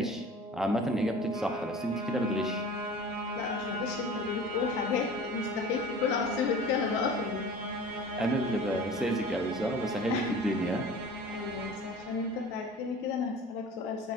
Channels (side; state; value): both; normal; correlation 0.40